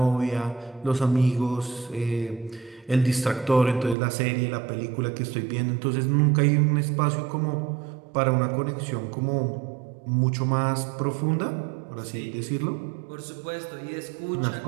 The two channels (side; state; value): left; drops out; at 4.0 s